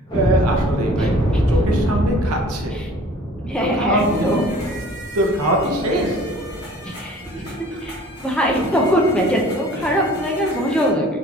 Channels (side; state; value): both; normal; correlation 0.49